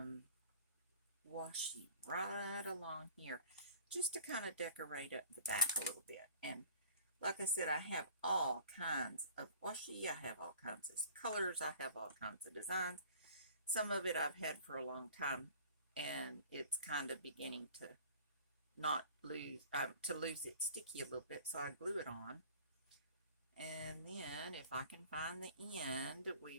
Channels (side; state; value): both; inverted; correlation -0.48